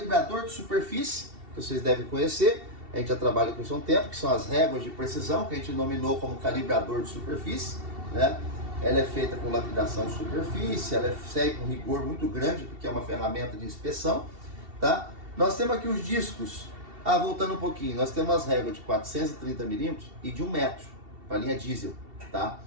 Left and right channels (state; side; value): late; left; 2.7 ms